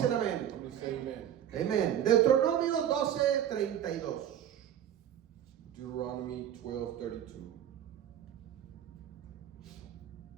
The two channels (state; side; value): quieter; left; 10.3 dB